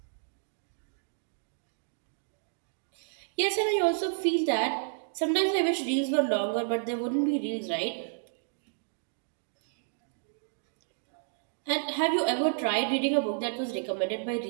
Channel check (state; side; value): silent; left; digital silence